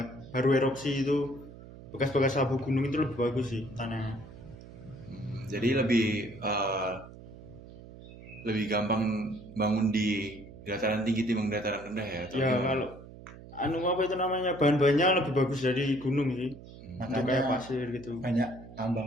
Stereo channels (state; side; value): noise; right; hum, 17 dB below the sound